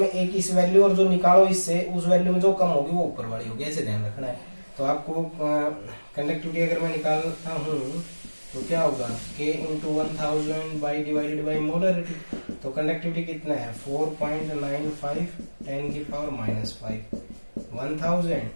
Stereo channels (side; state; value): both; inverted; correlation -1.00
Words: एक इस वैल्यू, और जो निकालो इससे उस वैल्यू में जो कम होगी वो ऊपर वाली होगी, ऐसे ध्यान रखना है। तो आपको कंडक्टिविटी अगर मैं निकालता हूँ तो क्या होगा, K × 1000 डिवाइडेड बाई मोलरिटी। तो कंडक्टिविटी कितना है 4.95 10⁻⁵ 1000